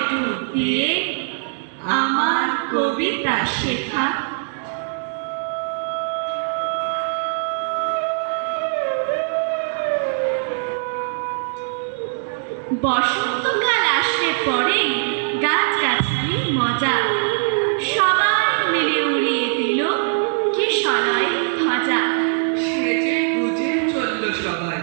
ডুব দিয়ে আমার কবিতা শেখা। বসন্তকাল আসলে পরে গাছগাছালির মজা, সবাই মিলে উড়িয়ে দিল কিশলয়ের ধ্বজা। সেজে গুজে চলল সবাই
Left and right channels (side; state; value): left; silent; digital silence